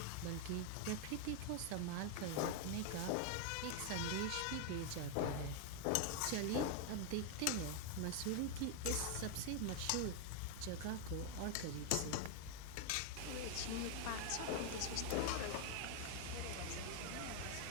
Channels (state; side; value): different; both; correlation 0.00